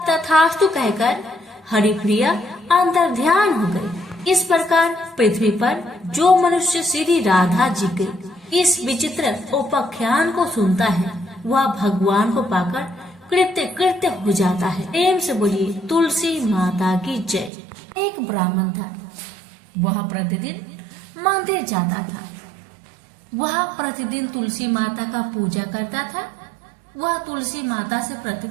तथास्तु कहकर हरिप्रिया अंतर्ध्यान हो गई। इस प्रकार पृथ्वी पर जो मनुष्य श्री राधा जी के इस विचित्र उपाख्यान को सुनता है वह भगवान को पाकर कृत्य कृत्य हो जाता है। प्रेम से बोलिए तुलसी माता की जय। एक ब्राह्मण था, वह प्रतिदिन मंदिर जाता था। वह प्रतिदिन तुलसी माता का पूजा करता था। वह तुलसी माता से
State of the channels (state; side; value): drops out; left; at 17.5 s